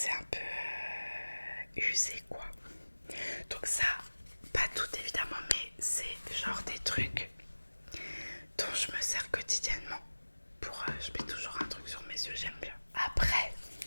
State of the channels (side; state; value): both; inverted; correlation -1.00